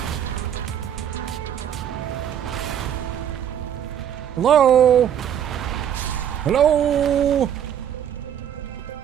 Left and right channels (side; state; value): left; quieter; 9.6 dB